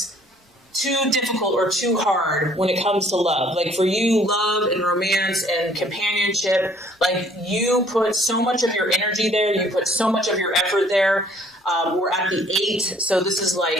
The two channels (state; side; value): normal; both; correlation 0.59